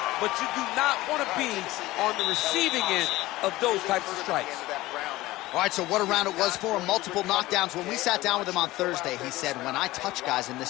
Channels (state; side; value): quieter; right; 18.1 dB